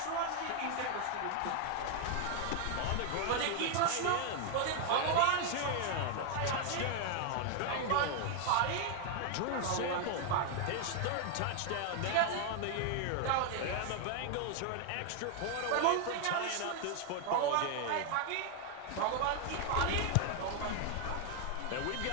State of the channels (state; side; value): different; both; correlation 0.00